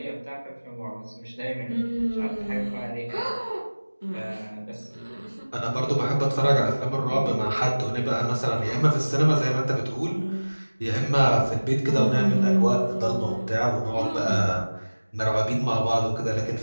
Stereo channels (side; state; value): both; inverted; correlation -1.00